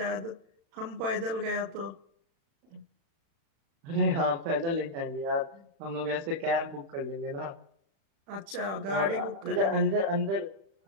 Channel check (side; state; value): left; late; 36 ms